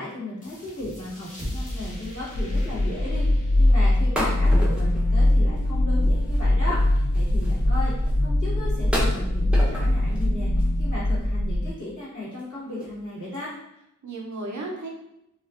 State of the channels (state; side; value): normal; both; correlation 0.93